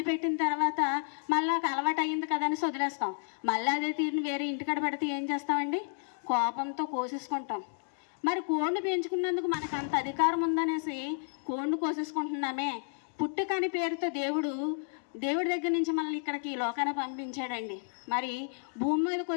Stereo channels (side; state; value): right; silent; 57 dB below the other